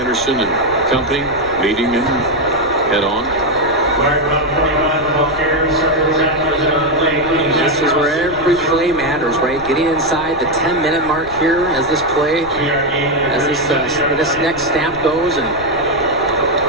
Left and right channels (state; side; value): noise; left; rumble, 18 dB below the sound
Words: and company meeting him head on. This is where every play matters, right? Getting inside the 10-minute mark here as this play, as this next snap goes, and